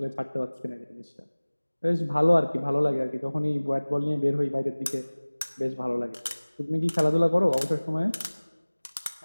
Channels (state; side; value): inverted; both; correlation -1.00